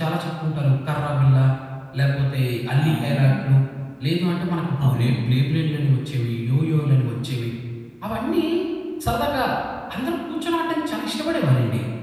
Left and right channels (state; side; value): identical; both; correlation 1.00